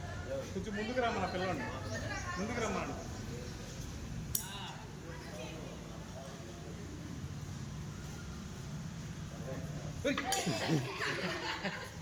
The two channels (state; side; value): identical; both; correlation 1.00